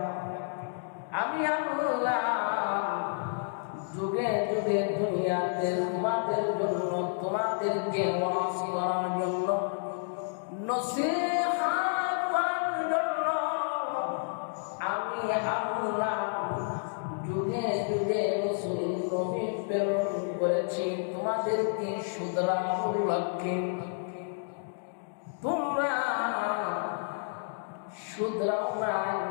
আমি আল্লাহ যুগে যুগে দুনিয়াতে তোমাদের জন্য, তোমাদেরকে ওয়াজ করার জন্য, নসিহত করার জন্য আমি আল্লাহ যুগে যুগে রাসূল নবী প্রেরণ করেছি তোমাদেরকে শুধরানোর লক্ষ্যে। তোমরা শুধরাও নাই,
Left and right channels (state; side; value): silent; right; digital silence